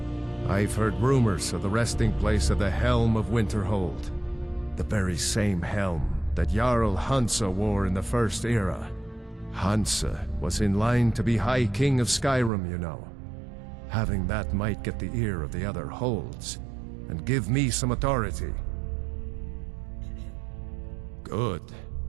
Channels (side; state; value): left; drops out; at 12.5 s